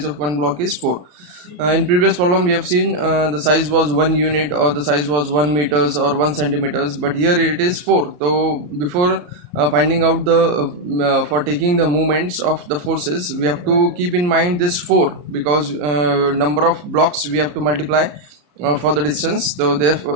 of one block is 4. In previous problem we have seen the size was 1 unit or the size was 1 meters or 1 centimeters, but here it is 4. So before finding out the for taking the movements of the forces, we have to keep in mind this 4, because number of blocks we have to multiply for the distance. So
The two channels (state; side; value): late; left; 34 ms